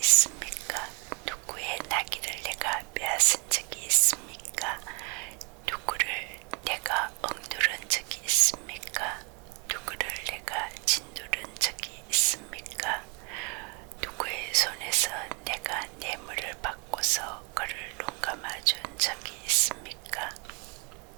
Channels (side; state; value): left; quieter; 32.6 dB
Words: 누구의 나귀를 내가 빼앗은 적이 있습니까? 누구를 내가 억누른 적이 있습니까? 누구를 내가 짓누른 적이 있습니까? 누구의 손에서 내가 뇌물을 받고서 그를 눈감아준 적이 있습니까?